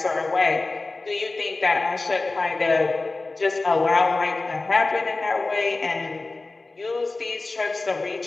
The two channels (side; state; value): right; quieter; 3.4 dB